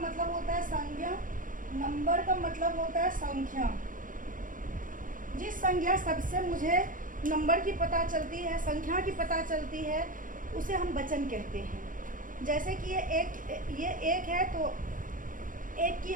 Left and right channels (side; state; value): left; late; 0.39 ms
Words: होता है संज्ञा, नंबर का मतलब होता है संख्या। जिस संख्या सबसे मुझे नंबर की पता चलती है, संख्या की पता चलती है, उसे हम वचन कहते हैं। जैसे कि ये एक है तो एक की